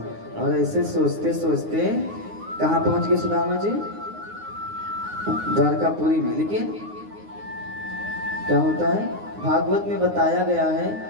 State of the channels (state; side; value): late; left; 9.6 ms